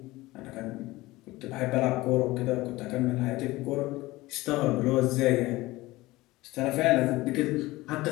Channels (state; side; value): quieter; right; 19.4 dB